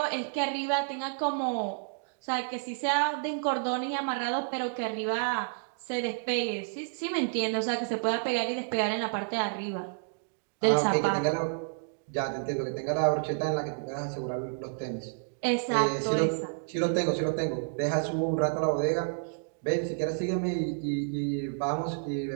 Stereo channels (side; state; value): left; silent; digital silence